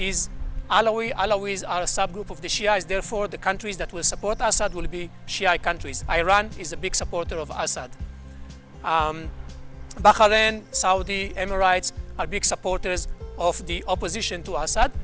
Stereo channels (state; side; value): identical; both; correlation 1.00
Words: Alawi. Alawis are a subgroup of the Shias. Therefore, the countries that will support Assad will be Shia countries. Iran is a big supporter of Assad. Bahrain, Saudi, Emirates are big supporters of the opposition to Assad.